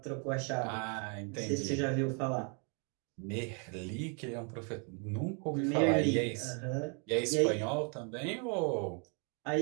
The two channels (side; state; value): left; quieter; 38.2 dB